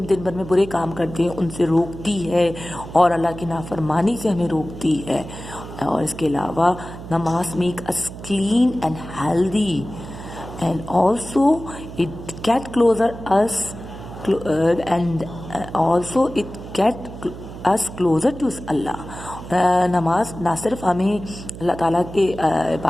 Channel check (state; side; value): noise; right; hum, 12 dB below the sound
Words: میں برے کام کرتے ہیں ان سے روکتی ہے اور اللہ کی نافرمانی سے ہمیں روکتی ہے. اور اس کے علاوہ نماز make us clean and healthy and also it get closer us and also it get us closer to Allah. نماز نہ صرف ہمیں اللہ تعالیٰ کے